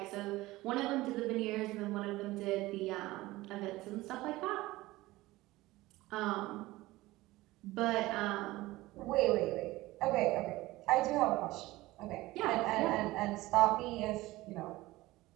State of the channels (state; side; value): quieter; left; 18.7 dB